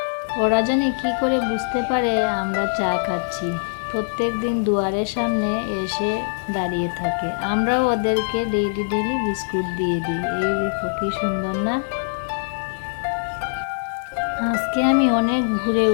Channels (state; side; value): silent; right; digital silence